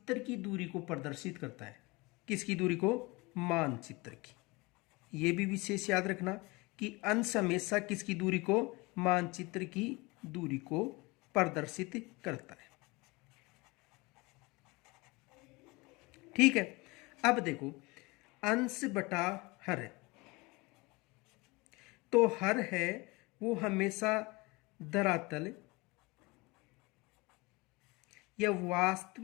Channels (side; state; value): right; quieter; 24.5 dB